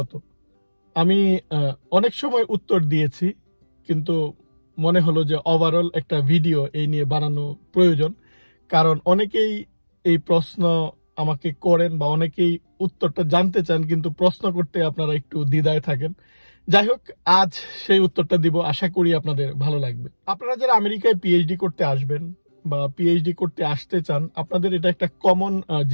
আমি অনেক সময় উত্তর দিয়েছি, কিন্তু মনে হলো যে ওভারঅল একটা ভিডিও এই নিয়ে বানানো প্রয়োজন। কারণ অনেকেই এই প্রশ্ন আমাকে করেন বা অনেকেই উত্তরটা জানতে চান, কিন্তু প্রশ্ন করতে আপনারা একটু দ্বিধায় থাকেন। যাই হোক, আজ সেই উত্তরটা দিব, আশা করি আপনাদের ভালো লাগবে। আপনারা যারা আমেরিকায় পিএইচডি করতে আসবেন বা পিএইচডি করতে আসতে চান, আপনাদের এটা একটা কমন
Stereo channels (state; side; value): inverted; both; correlation -1.00